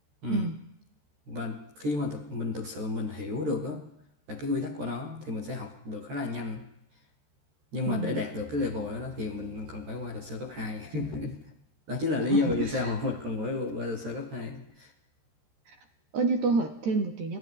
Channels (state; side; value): late; left; 13 ms